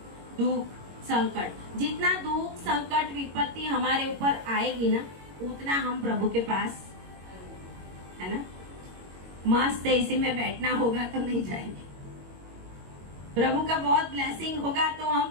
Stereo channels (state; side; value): late; left; 22 ms